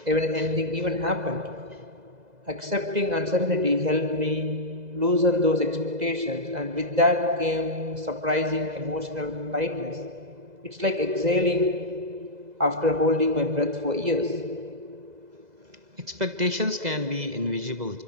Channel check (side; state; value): left; late; 2.0 ms